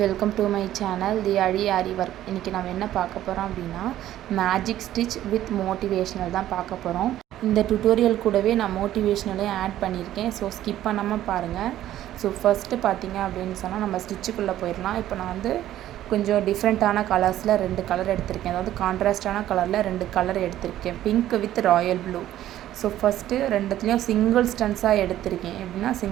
to my channel the aarI work. இன்றைக்கி நம்ம என்ன பார்க்க போகிறோம் அப்படின்னா மேஜிக் ஸ்டிச் வித் மோட்டிவேஷ்னல் தான் பார்க்க போகிறோம். இந்த டுட்டோரியல் கூடவே நான் மோட்டிவேஷ்னலையும் ஆட் பண்ணியிருக்கேன். ஸோ ஸ்கிப் பண்ணாமல் பாருங்கள். ஸோ ஃபஸ்ட்டு பார்த்தீங்க அப்படின்னு சொன்னால் நம்ம ஸ்டிச்சுக்குள்ளே போயிடலாம். இப்போ நான் கொஞ்சம் டிஃப்ரெண்ட்டான கலர்ஸில் 2 கலர் எடுத்திருக்கேன். அதாவது கான்ட்ராஸ்டான கலரில் 2 கலர் எடுத்திருக்கேன், pink with royal blue. So first ரெண்டுத்துலேயும் சிங்கிள் ஸ்டன்ஸாக எடுத்திருக்கேன். எப்படின்னா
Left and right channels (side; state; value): left; quieter; 13.0 dB